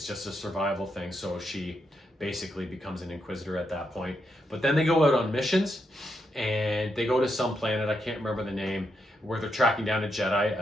just a survival thing. So she basically becomes an Inquisitor at that point. But then they go out on missions, and they go to some planet, I can't remember the name, where they're tracking down a Jedi,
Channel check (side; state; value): both; normal; correlation 0.81